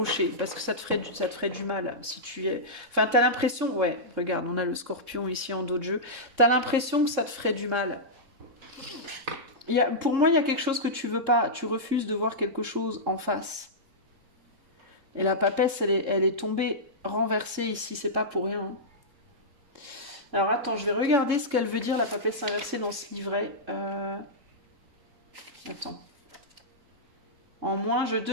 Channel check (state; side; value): late; left; 3.6 ms